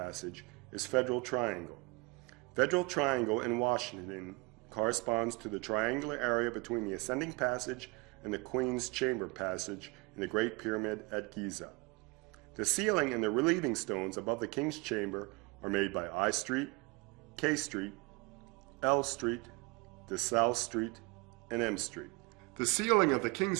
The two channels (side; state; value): left; quieter; 27.2 dB